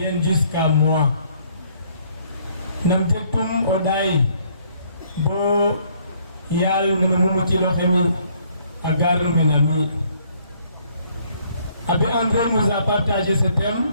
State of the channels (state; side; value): inverted; both; correlation -0.64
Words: jusqu'à moi? Nam tektum oday bo yal numu ci loxemi agar menami. Abbé André nous a partagé ce thème